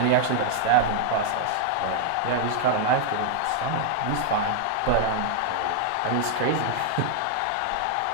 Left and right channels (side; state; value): both; different; correlation -0.01